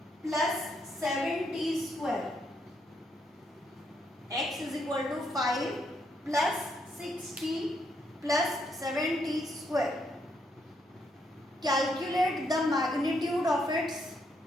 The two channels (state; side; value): normal; both; correlation 0.76